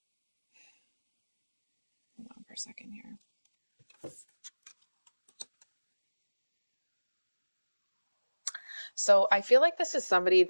hold on for a second here. So I feel like this is somebody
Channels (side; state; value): both; inverted; correlation -1.00